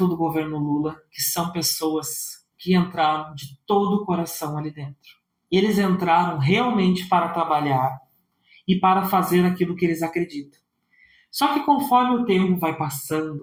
do governo Lula que são pessoas que entraram de todo o coração ali dentro. Eles entraram realmente para trabalhar e para fazer aquilo que eles acreditam. Só que conforme o tempo vai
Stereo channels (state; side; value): identical; both; correlation 1.00